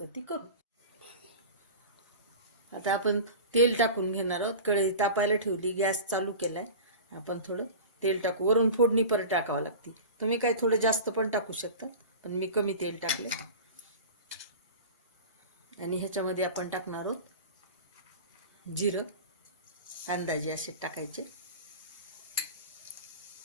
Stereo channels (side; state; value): both; inverted; correlation -0.33